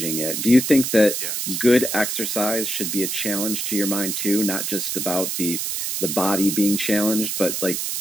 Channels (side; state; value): right; noise; hiss, 2 dB below the sound